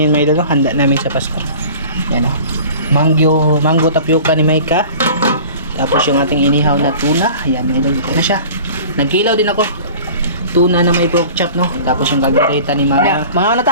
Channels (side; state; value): both; inverted; correlation -0.42